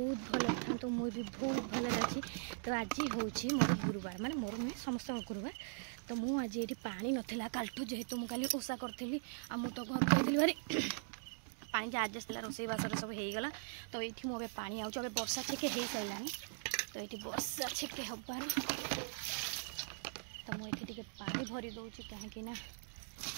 भल था मुझे भी बहुत भल अच्छी। तो आज हूँ मोर गुरुवार माने मोर नहीं समस्त गुरुवार तो मुझे ये पानी नाला कालठू जेहेतु मुझे ओषा करी आ मु तो घर जाइली भारी पानी जहाँ आजस्ट रोसईबास सब होगला। तो ये मुझे पानी आऊँ वर्षा छेके हो सारा तो ये वर्षा छेके हबार तो मुझे पानी भरी दूसरी कहीं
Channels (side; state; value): left; silent; digital silence